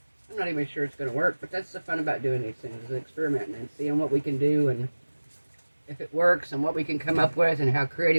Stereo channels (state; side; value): inverted; both; correlation -1.00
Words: not even sure it's going to work, but that's the fun about doing these things, is experimenting and seeing what we can do and if it works and what we can come up with and how